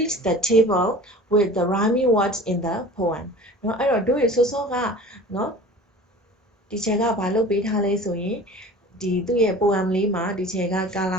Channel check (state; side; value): normal; both; correlation 0.41